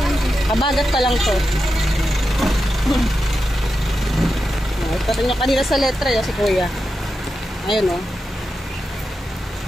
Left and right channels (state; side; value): normal; both; correlation 0.89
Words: Kabagat pa lang to. Ito rin yung kanina sa letra yun, si Kuya. Ayun o.